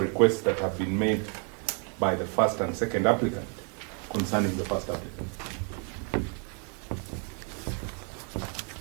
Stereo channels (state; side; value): quieter; left; 38.7 dB